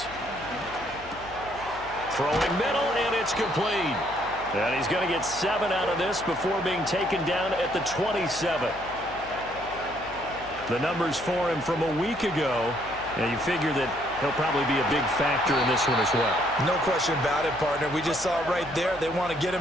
Throwing middle, and it's complete. And he's going to get 7 out of this before being taken down at the 27. The numbers for him from a week ago, and you figure that he'll probably be a big factor in this one as well. No question about it, partner. We just saw it right there. They want to get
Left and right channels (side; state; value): left; noise; hum, 18 dB below the sound